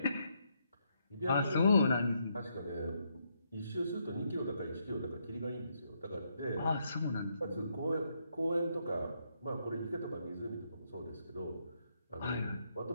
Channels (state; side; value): inverted; both; correlation -0.77